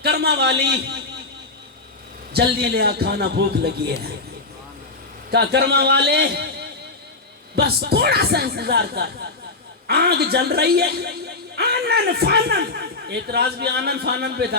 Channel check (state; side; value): quieter; right; 3.5 dB